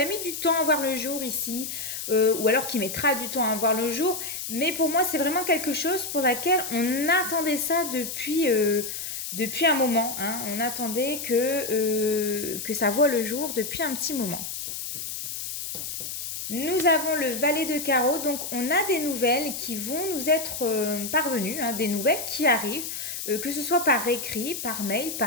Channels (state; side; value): noise; left; hiss, 6 dB below the sound